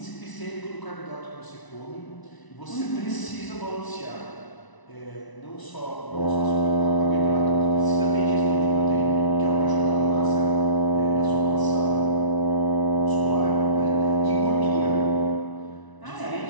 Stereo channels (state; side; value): late; right; 1.0 ms